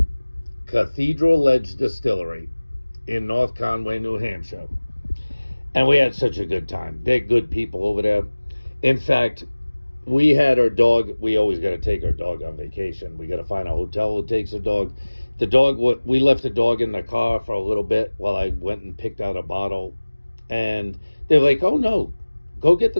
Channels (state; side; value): inverted; both; correlation -1.00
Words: Cathedral Edge Distillery in North Conway, New Hampshire. And we had such a good time. They're good people over there. In fact, we had our dog. We always got to take our dog on vacation. We got to find a hotel who takes a dog. We left the dog in the car for a little bit while I went and picked out a bottle. And they're like, oh no, go get